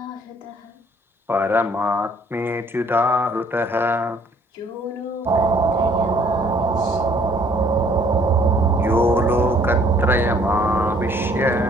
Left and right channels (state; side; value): normal; both; correlation 0.60